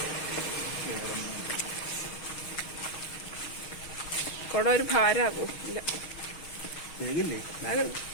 കൊട ഒരു ഭാരമാകൂ. ഇല്ല,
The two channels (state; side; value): late; right; 6.4 ms